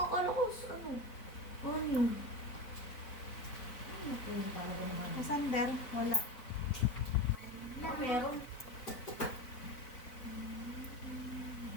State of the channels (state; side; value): late; right; 4.0 ms